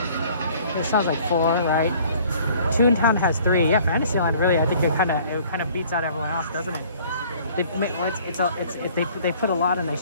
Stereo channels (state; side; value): inverted; both; correlation -0.54